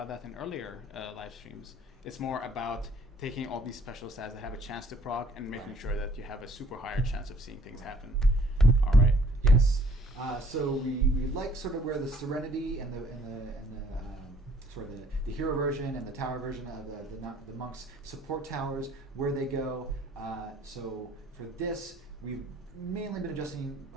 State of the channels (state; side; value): normal; both; correlation 0.58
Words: that in earlier live streams. It's more about taking all these special stats that have a chance to proc and making sure that you have a super higher chance of seeing things happen. All right. Yes. So we like sort of where the Serenity and the sort of the hero version and the tower version of the monks support towers, where they go. So for this, we've mainly been